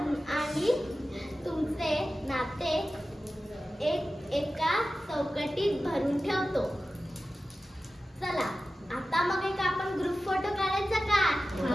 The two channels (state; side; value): normal; both; correlation 0.94